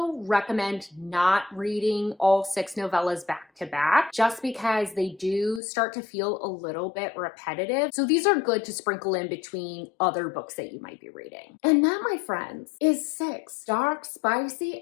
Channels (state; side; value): drops out; right; at 5.6 s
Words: recommend not reading all 6 novellas back to back just because they do start to feel a little bit repetitive. So these are good to sprinkle in between other books that you might be reading. And that, my friends, is 6 dark, spicy,